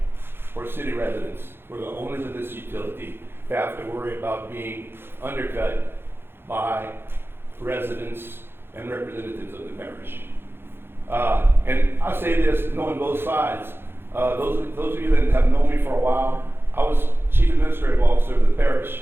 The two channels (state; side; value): late; left; 0.11 ms